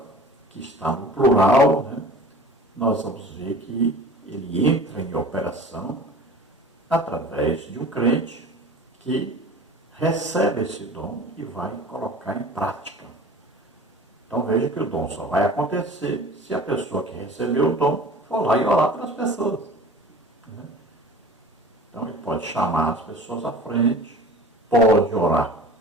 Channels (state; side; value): normal; both; correlation 0.41